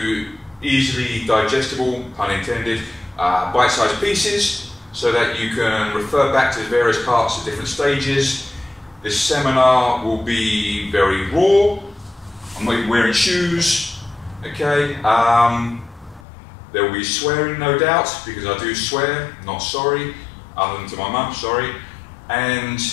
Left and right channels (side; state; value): right; drops out; at 16.2 s